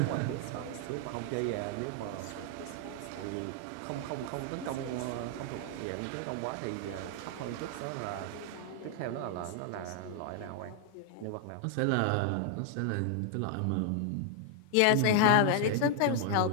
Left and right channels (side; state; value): both; different; correlation 0.00